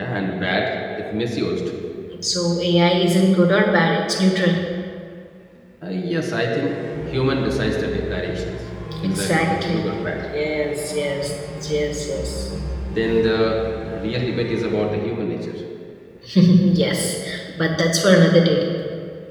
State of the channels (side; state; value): both; identical; correlation 1.00